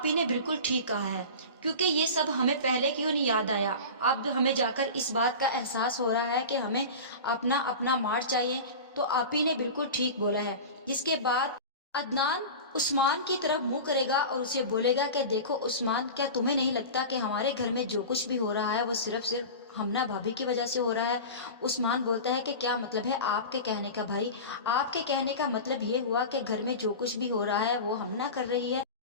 نے بالکل ٹھیک کہا ہے، کیونکہ یہ سب ہمیں پہلے کیوں نہیں یاد آیا، اب ہمیں جا کر اس بات کا احساس ہو رہا ہے کہ ہمیں اپنا مار چاہیے، تو آپی نے بالکل ٹھیک بولا ہے۔ جس کے بعد عدنان عثمان کی طرف منہ کرے گا اور اسے بولے گا کہ دیکھو عثمان، کیا تمہیں نہیں لگتا کہ ہمارے گھر میں جو کچھ بھی ہو رہا ہے وہ صرف ہمنا بھابھی کی وجہ سے ہو رہا ہے؟ عثمان بولتا ہے کہ کیا مطلب ہے آپ کے کہنے کا بھائی؟ آپ کے کہنے کا مطلب یہ ہوا کہ گھر میں جو کچھ بھی ہو رہا ہے وہ ہمنا کر رہی ہے؟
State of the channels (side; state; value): both; inverted; correlation -0.31